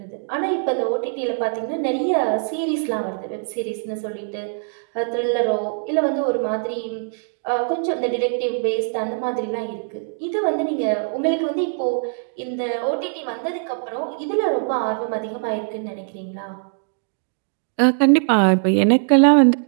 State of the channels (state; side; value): silent; left; digital silence